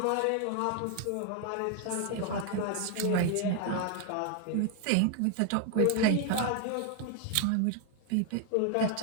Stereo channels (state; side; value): different; both; correlation 0.01